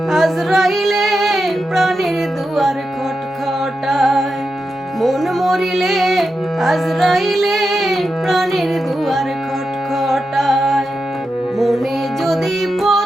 আজরাইলে প্রাণের দুয়ার খটখটায়, মন মরিলে আজরাইলে প্রাণের দুয়ার খটখটায়। মনে যদি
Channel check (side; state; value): both; normal; correlation 0.89